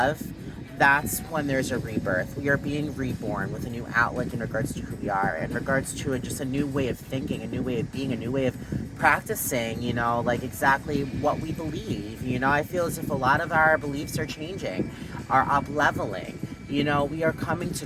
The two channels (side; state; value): both; identical; correlation 1.00